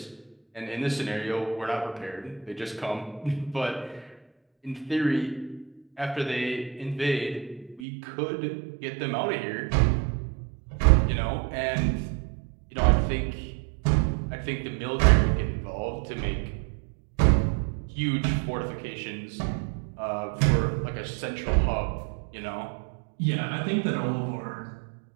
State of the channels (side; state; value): left; drops out; at 7.8 s